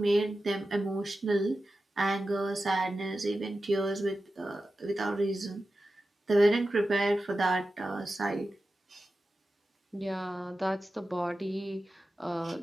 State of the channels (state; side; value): normal; both; correlation 0.93